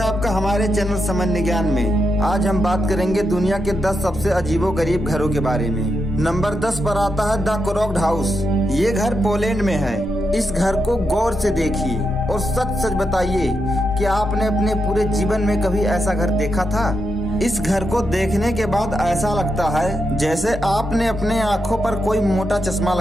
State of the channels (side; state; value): both; normal; correlation 0.84